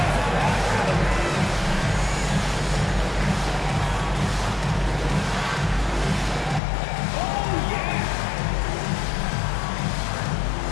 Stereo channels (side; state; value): right; drops out; at 6.6 s